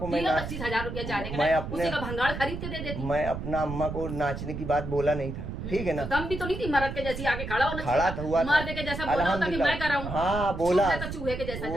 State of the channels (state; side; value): noise; right; rumble, 7 dB below the sound